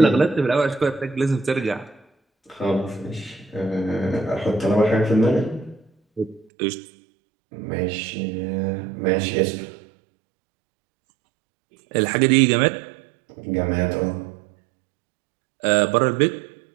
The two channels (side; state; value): left; drops out; at 6.5 s